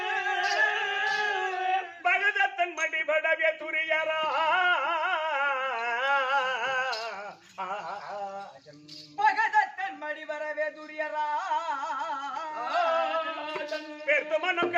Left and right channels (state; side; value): identical; both; correlation 1.00